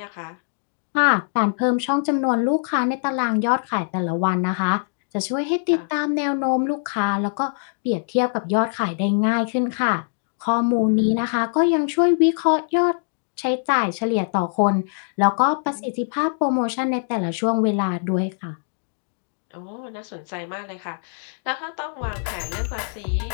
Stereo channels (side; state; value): right; silent; digital silence